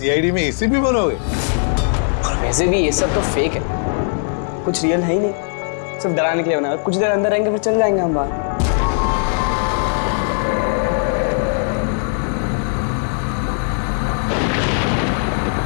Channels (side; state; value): right; silent; 65 dB below the other